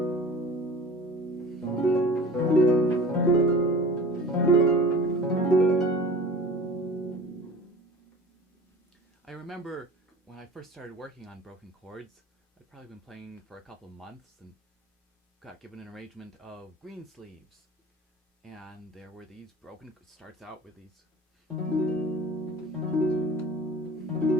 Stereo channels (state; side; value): normal; both; correlation 0.41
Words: I remember when I first started working on broken chords, I'd probably been playing for a couple of months and got given an arrangement of green sleeves. And there were these broken, starts out with these